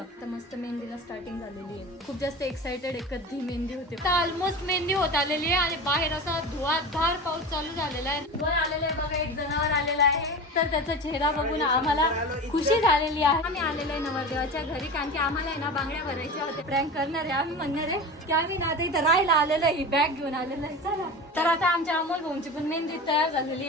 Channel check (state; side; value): normal; both; correlation 0.30